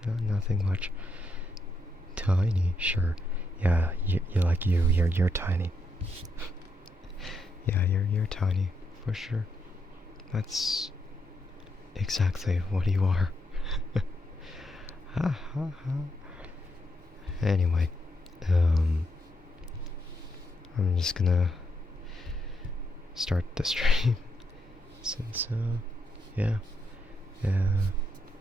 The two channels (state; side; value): normal; both; correlation 0.79